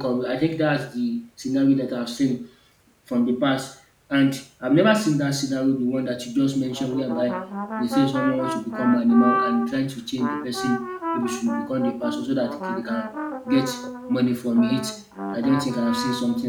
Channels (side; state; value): both; identical; correlation 1.00